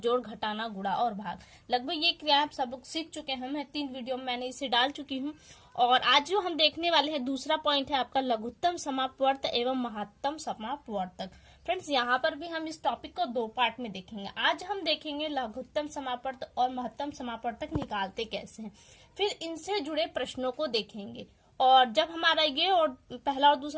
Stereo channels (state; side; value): identical; both; correlation 1.00